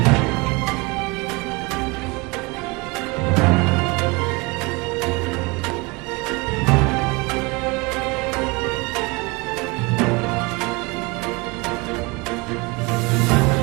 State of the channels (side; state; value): left; quieter; 25.9 dB